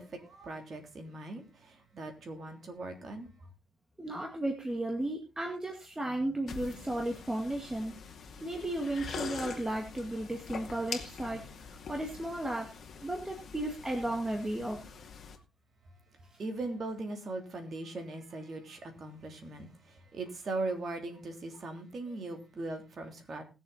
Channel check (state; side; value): normal; both; correlation 0.85